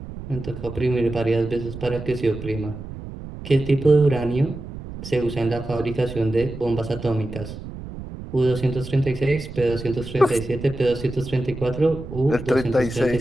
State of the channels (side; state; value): right; noise; rumble, 11 dB below the sound